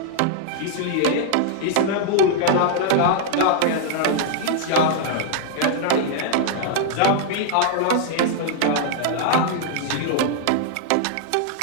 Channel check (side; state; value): both; different; correlation 0.00